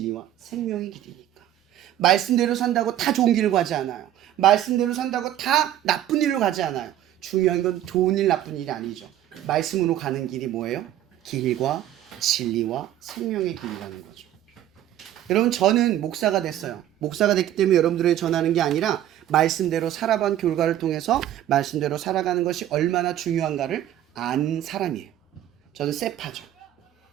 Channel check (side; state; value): left; quieter; 12.1 dB